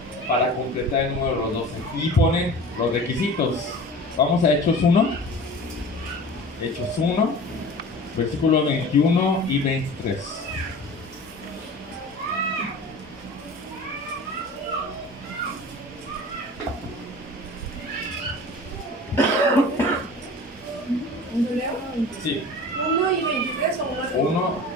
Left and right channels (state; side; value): normal; both; correlation 0.39